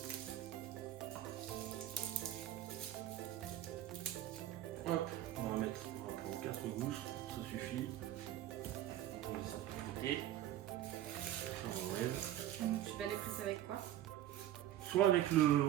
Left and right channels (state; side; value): quieter; left; 12.9 dB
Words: allez presser avec quoi? Soit